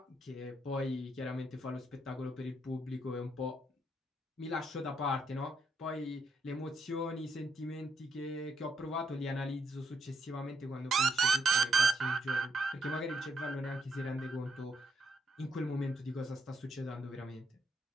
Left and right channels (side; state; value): both; normal; correlation 0.76